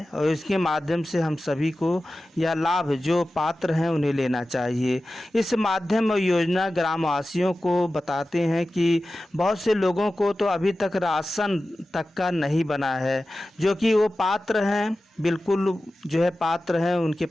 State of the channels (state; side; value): normal; both; correlation 0.95